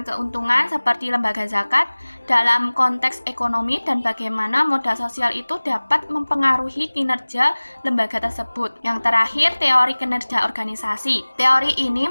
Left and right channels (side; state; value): both; inverted; correlation -1.00